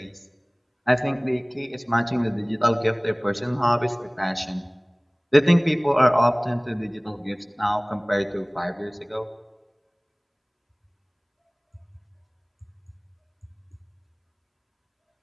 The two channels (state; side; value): identical; both; correlation 1.00